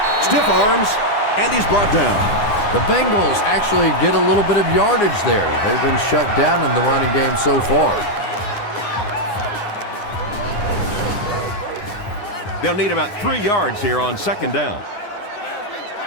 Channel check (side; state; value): right; late; 9.6 ms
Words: Stiff arms, and he's brought down. The Bengals actually get a little bit of yardage there. They've been shut down in the running game so far. They'll need about 3 yards here on second down.